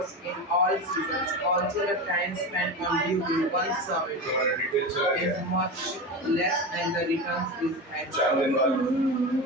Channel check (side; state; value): both; normal; correlation 0.23